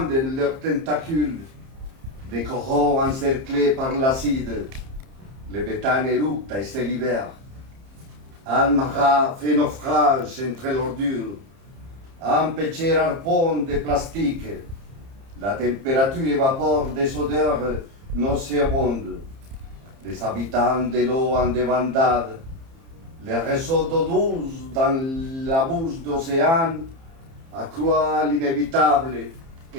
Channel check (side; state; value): left; late; 30 ms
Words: leurs tentacules. Des coraux encerclés par l'acide. Le béthane éructe et se libère. Almara fait naufrage entre l'ordure. Un petit harpon de plastique. La température évapore des odeurs nauséabondes. Les habitants de l'eau en débandade Les réseaux d'eau douce dans la bouche d'océan accroît l'inévitable